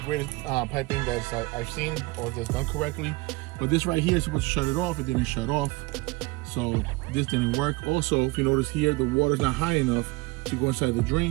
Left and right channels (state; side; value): quieter; left; 23.4 dB